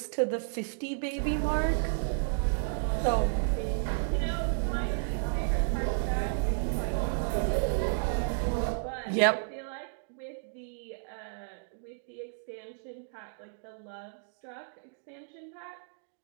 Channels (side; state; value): left; silent; digital silence